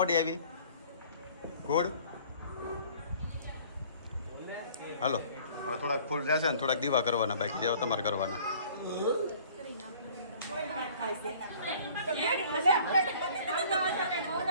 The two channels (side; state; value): both; inverted; correlation -0.52